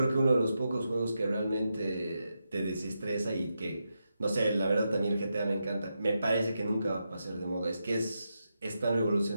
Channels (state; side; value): inverted; both; correlation -0.86